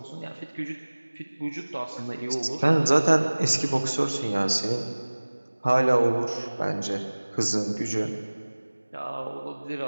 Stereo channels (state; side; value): inverted; both; correlation -1.00